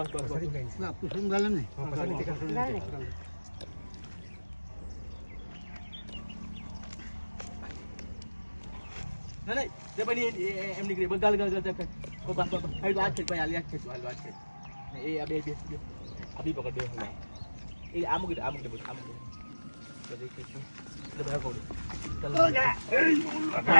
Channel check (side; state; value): both; inverted; correlation -1.00